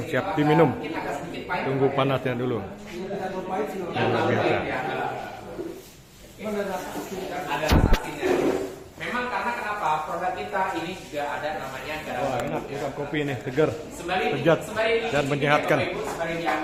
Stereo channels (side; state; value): both; identical; correlation 1.00